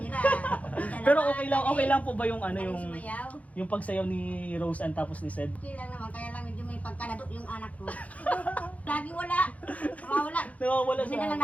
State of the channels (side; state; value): right; late; 0.069 ms